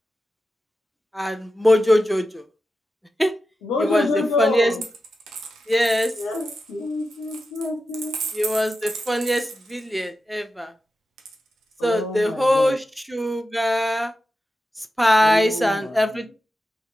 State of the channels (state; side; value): normal; both; correlation 0.91